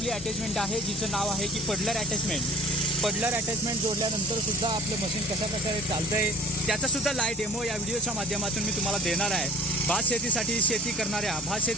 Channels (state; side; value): normal; both; correlation 0.47